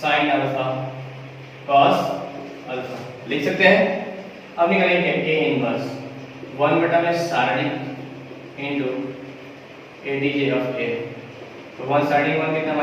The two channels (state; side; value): identical; both; correlation 1.00